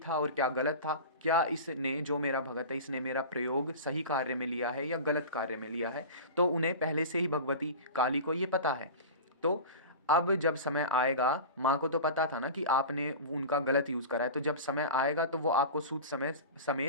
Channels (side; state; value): both; inverted; correlation -0.31